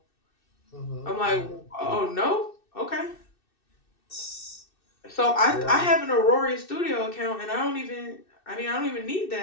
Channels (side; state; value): right; late; 2.6 ms